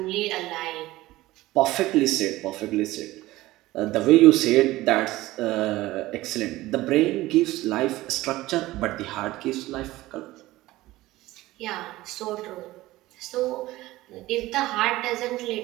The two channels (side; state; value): left; quieter; 17.7 dB